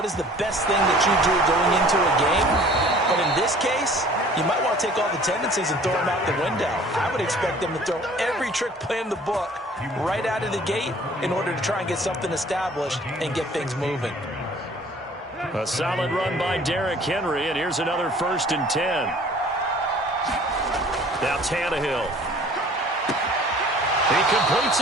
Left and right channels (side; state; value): both; normal; correlation 0.51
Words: is the best thing that you do going into a game? But in this case, you might want to take all the tendencies and throw them out the window. I would expect them to throw every trick play in the book right out of the gate in order to try and get something established and get things moving. A solid run by Derrick Henry, and here's another 1st and 10. Now Tannehill. He completes